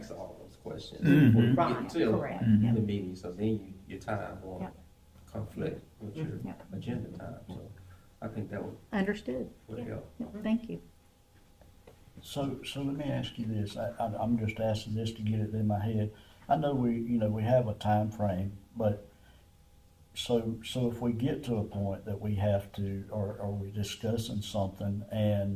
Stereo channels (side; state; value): both; identical; correlation 1.00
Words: all those questions before you Right, get to correct. the meeting, so then your time won't Yep. conflict with your Yep. agenda time, so I think that Understood. would help. Thank you. So let me ask you this, I'm just asking this to get it in my head. I know we have a time frame, but so if we get to a point that we have to, or we're discussing something